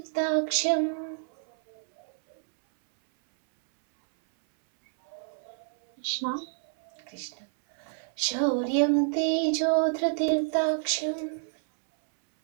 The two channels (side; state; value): left; silent; 59 dB below the other